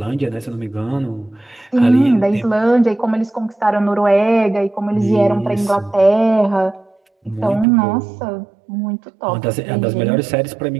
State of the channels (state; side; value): drops out; left; at 7.7 s